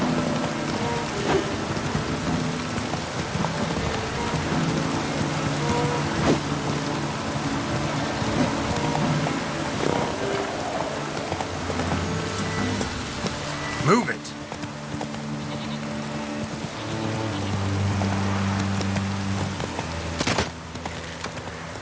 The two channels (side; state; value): both; identical; correlation 1.00